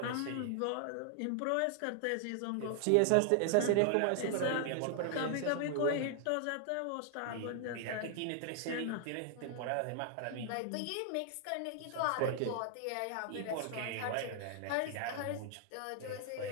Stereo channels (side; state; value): both; different; correlation 0.00